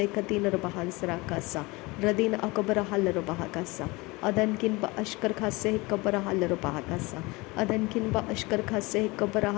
Katina Bahansarakasa, Radina Akabara Halarabahakasa, Adankin Ba Ashkar Khase Kabara Halarabahakasa, Adankin Ba Ashkar Khase Kabara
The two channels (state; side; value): quieter; right; 23.9 dB